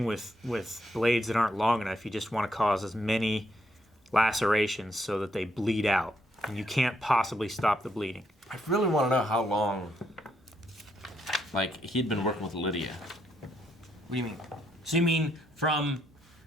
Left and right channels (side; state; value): both; normal; correlation 0.75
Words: with blades that aren't long enough, you just want to cause as many lacerations so that they bleed out. And you can't possibly stop the bleeding. I really want to know how long, like, he'd been working with Lydia. What do you mean? So you mean from